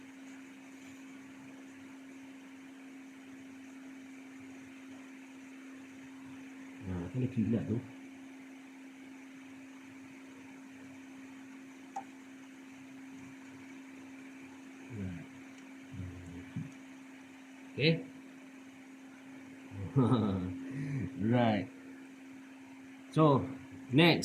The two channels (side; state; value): both; identical; correlation 1.00